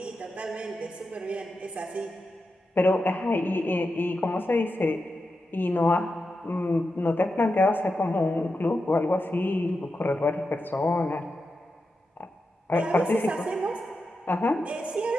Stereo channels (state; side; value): normal; both; correlation 0.89